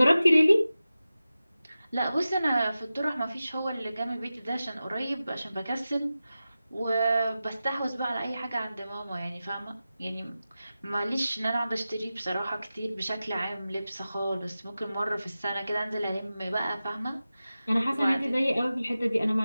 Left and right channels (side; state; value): both; inverted; correlation -0.94